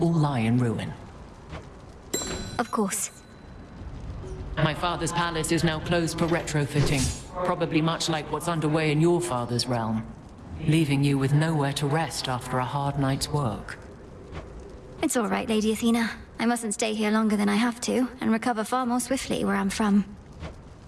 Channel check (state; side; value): identical; both; correlation 1.00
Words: lie in ruin. Of course. My father's palace is now closed for retrofitting, probably much like what's underway in your father's realm, leaving you with nowhere to rest after a hard night's work. It's all right, Lady Athena. I mustn't stay here longer than I have to, and recover far more swiftly where I'm from.